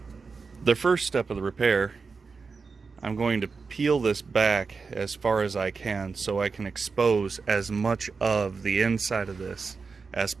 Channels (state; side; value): quieter; left; 4.8 dB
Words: The first step of the repair, I'm going to peel this back as far as I can so I can expose as much of the inside of this as